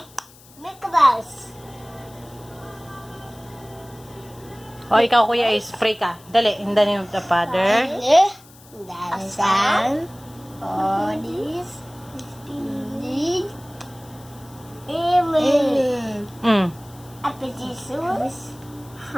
Make a mouse. O, ikaw, Kuya Ace, pray ka. Dali, in the name of the Father. The Son, Holy Spirit. Amen. At Jesus,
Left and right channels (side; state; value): left; noise; hiss, 24 dB below the sound